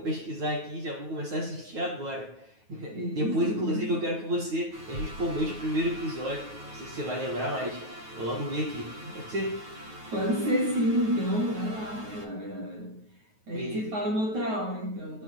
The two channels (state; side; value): late; left; 9.3 ms